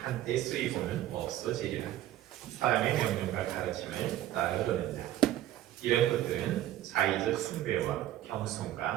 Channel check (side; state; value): left; quieter; 13.4 dB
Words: 쓰이고는 없어지리라. 사람의 명령과 가르침을 따르려는다. 이런 것들은 자의적 숭배와